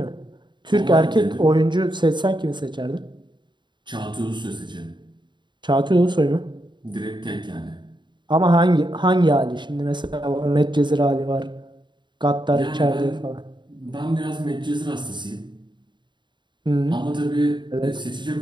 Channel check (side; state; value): left; late; 0.22 ms